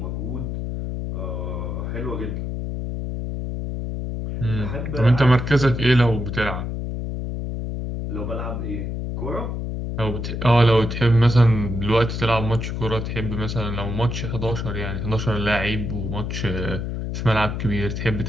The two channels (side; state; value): left; noise; hum, 4 dB below the sound